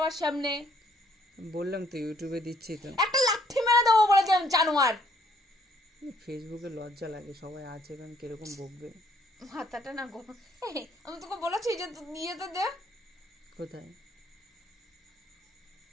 সামনে। বললাম তো ইউটিউবে দিচ্ছি তো। একটা লাথি মেরে দেবো বলেছিলাম, জানোয়ার। ফেসবুকে লজ্জা লাগে, সবাই আছে কারণ কিরকম বকবে। মাথাটা না গো, আমি তোকে বলেছি যে দিয়ে তো দে। কোথায়?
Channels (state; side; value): normal; both; correlation 0.65